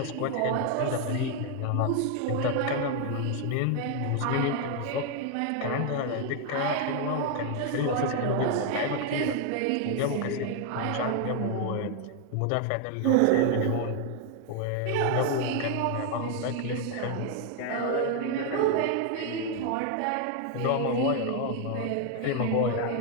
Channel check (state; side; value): different; both; correlation 0.00